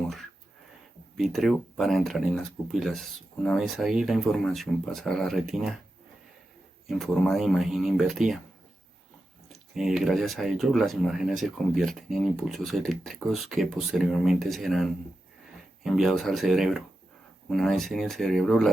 vítreo para entrar en las pupilas. Una vez ahí, la información pasa a la retina en forma de imagen invertida. Gracias a ello, las imágenes se convierten en impulsos eléctricos que posteriormente serán enviados al cerebro. Una vez en el cerebro,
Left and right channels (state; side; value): normal; both; correlation 0.91